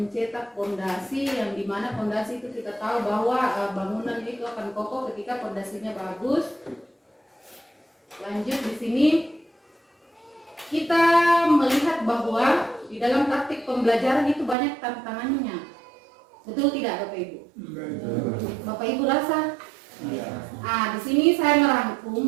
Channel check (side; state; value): left; drops out; at 14.6 s